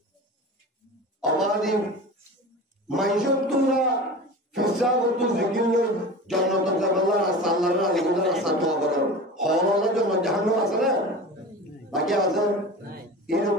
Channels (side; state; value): both; normal; correlation 0.33